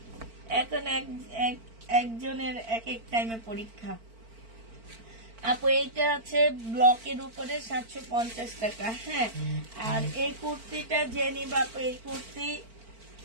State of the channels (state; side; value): late; left; 4.4 ms